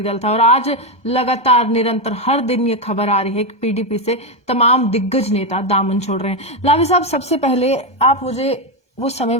दल था। और आज लगातार निरंतर हर दिन ये खबर आ रही है कि पीडीपी से तमाम दिग्गज नेता दामन छोड़ रहे हैं। लावे साहब, सबसे पहले आप मुझे वो समय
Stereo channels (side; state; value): right; late; 1.2 ms